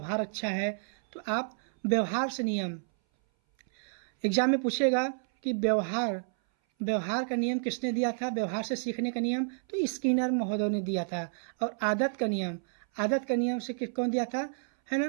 अच्छा है, तो आप व्यवहार से नियम, एग्जाम में पूछेगा कि व्यवहार का नियम किसने दिया था, व्यवहार से सीखने का नियम तो स्किनर महोदय ने दिया था। और आदत का नियम से कौन दिया था, है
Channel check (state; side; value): silent; left; 58 dB below the other